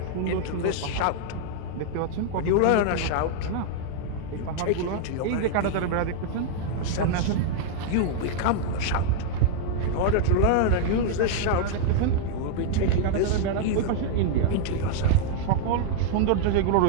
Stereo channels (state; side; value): different; both; correlation -0.01